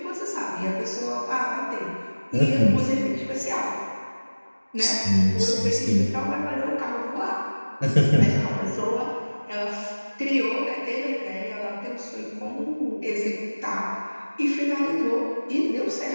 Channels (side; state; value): both; inverted; correlation -1.00